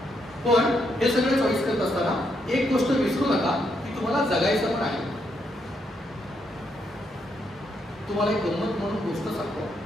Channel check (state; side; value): normal; both; correlation 0.77